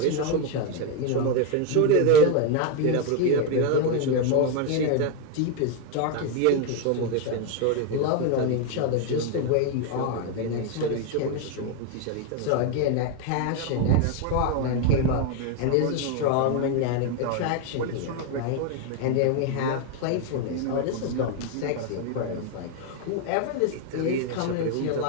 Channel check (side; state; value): both; different; correlation 0.02